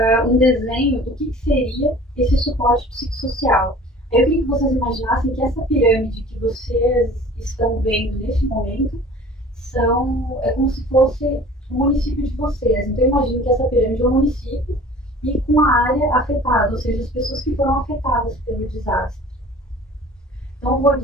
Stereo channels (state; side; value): normal; both; correlation 0.45